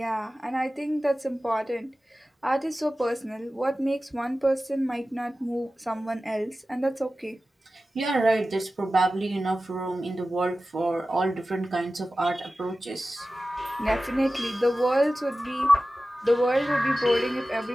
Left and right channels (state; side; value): normal; both; correlation 0.95